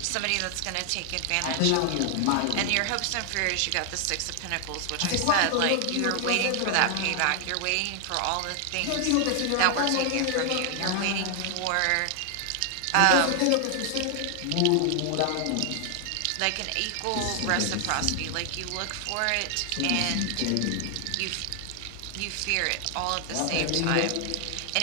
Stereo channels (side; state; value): both; different; correlation 0.00